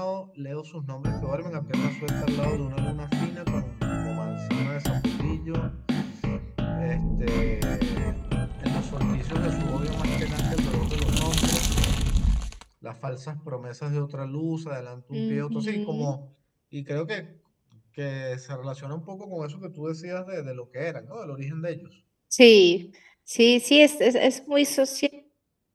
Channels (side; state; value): both; identical; correlation 1.00